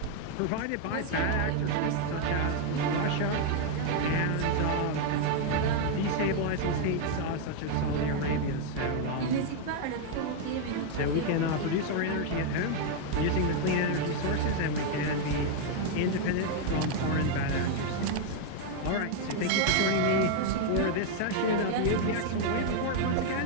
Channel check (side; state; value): both; different; correlation 0.00